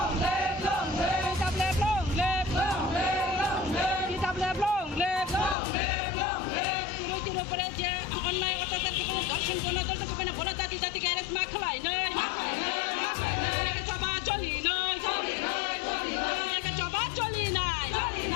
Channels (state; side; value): drops out; right; at 5.6 s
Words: live long live TWF long live long live long live TWF long live long live long live Tiro Praja online অত্যাচার কে দর্শন কোন দল তো কেন বলা জাতি জাতি কে রেস মাখলাই নয় কে সবা চলি নয় কে সবা চলি নয়